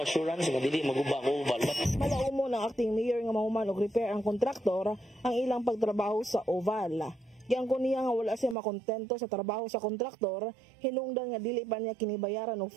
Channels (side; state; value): left; drops out; at 8.6 s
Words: assurance nga dili maguba ang oval. Malaumo ng acting mayor nga mahuman og repair ang kontraktor ang ilang pagtrabaho sa oval. Giangkon niya nga wala siya makontento sa trabaho sa kontraktor, hinungdan nga dili pa niya kinibayaran og